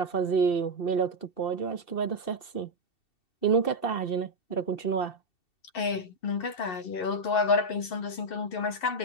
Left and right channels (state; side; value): late; right; 2.7 ms